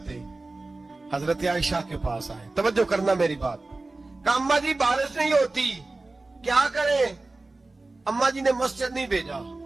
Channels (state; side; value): quieter; left; 3.2 dB